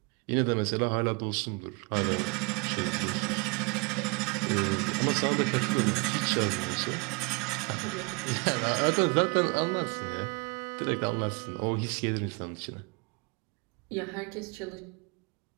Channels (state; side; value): quieter; left; 30.7 dB